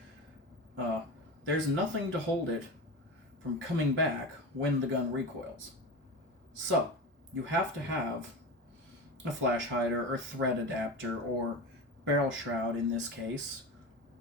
there's nothing to hold it from coming back when the gun recoils. So, you have to have a flash hider or thread adapter or barrel shroud in this case,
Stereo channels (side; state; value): both; normal; correlation 0.26